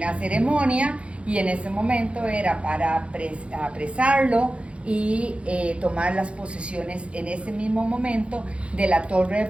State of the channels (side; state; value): left; late; 0.060 ms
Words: ceremonia y en ese momento era para apresarlo y tomar las posesiones en ese mismo momento de la Torre de